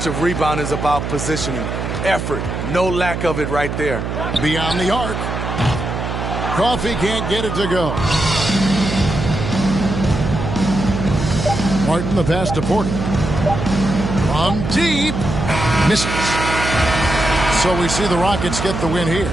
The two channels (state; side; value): noise; right; hum, 4 dB below the sound